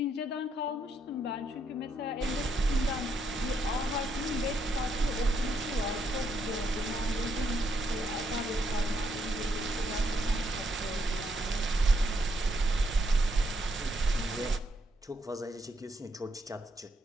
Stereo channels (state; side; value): normal; both; correlation 0.76